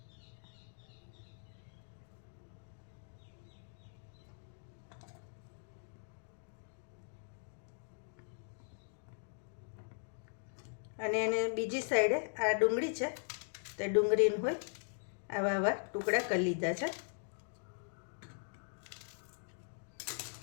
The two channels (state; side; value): silent; right; digital silence